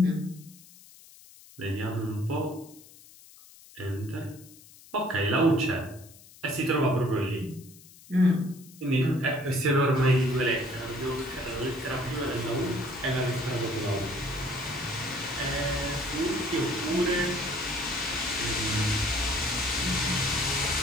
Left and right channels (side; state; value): left; noise; hiss, 22 dB below the sound